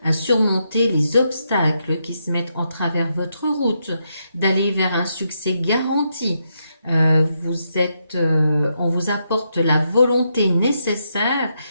à surmonter les obstacles qui se mettent en travers votre route, d'aller vers un succès garanti. On vous apporte la volonté nécessaire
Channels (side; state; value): both; inverted; correlation -0.81